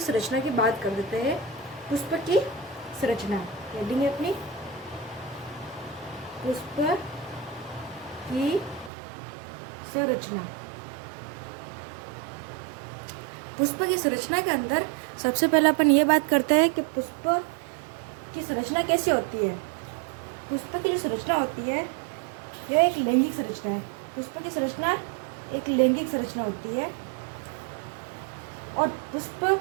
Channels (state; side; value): drops out; left; at 8.9 s